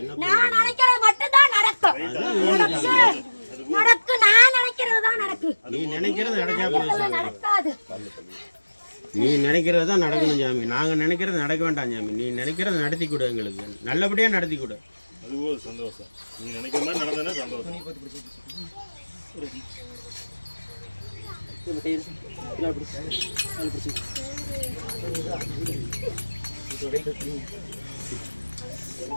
நான் நினைக்கிறது மட்டும் தான் நடக்கும். நடக்கு நான் நினைக்கிறது தான் நடக்கு. நீ நினைக்கிறது நடக்காது. நீ நினைக்கிறது தான் நடக்கணும் சாமி. நாங்க நினைக்கிறது நடக்க வேண்டாம் சாமி. நீ நினைக்கிறது நடத்தி கொடு, எங்களுக்கு நல்லபடியா நடத்தி கொடு. அது ஒரு சந்தோஷம். நீ நினைக்கிற மாதிரி நடந்ததுன்னா சந்தோஷம்.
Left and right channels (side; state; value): both; inverted; correlation -1.00